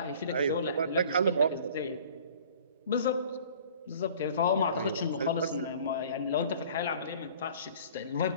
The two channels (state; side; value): inverted; both; correlation -0.48